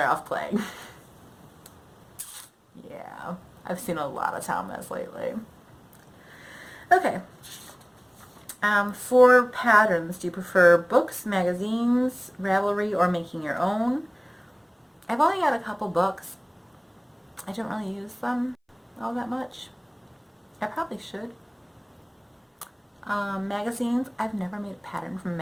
off playing. Yeah. I've seen a lot of Thomas lately. Okay. For patterns, do you prefer books, magazines, Ravelry, or making your own? I've only got a couple books. I don't really use them all that much. I probably should. Magazines, I've never made a pattern from a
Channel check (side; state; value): both; identical; correlation 1.00